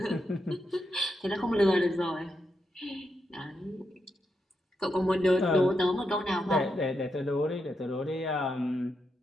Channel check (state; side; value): normal; both; correlation 0.84